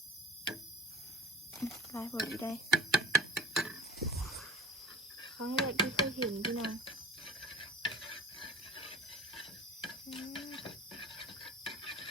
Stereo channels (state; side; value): normal; both; correlation 0.42